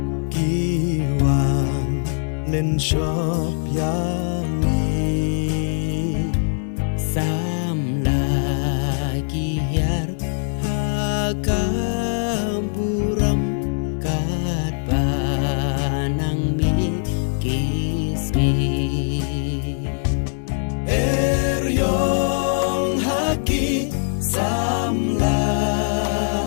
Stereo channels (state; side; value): silent; right; 65 dB below the other